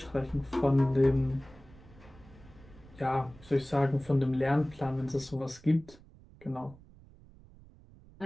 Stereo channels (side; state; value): right; noise; rumble, 23 dB below the sound